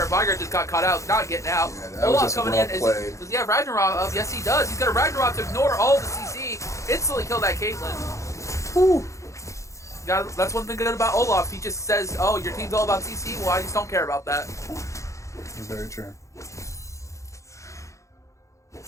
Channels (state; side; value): late; right; 0.15 ms